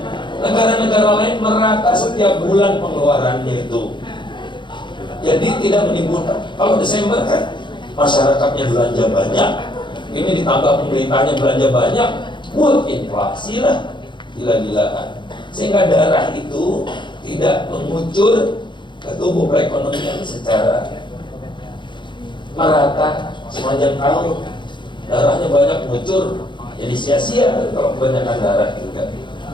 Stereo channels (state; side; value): late; right; 0.23 ms